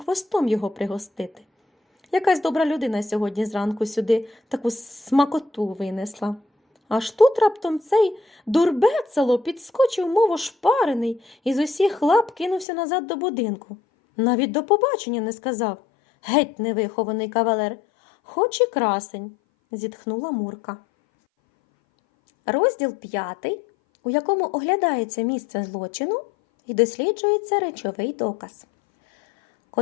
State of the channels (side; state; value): right; drops out; at 12.7 s